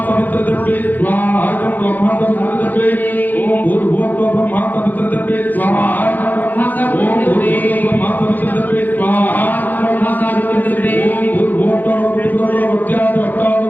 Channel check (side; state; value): right; late; 0.085 ms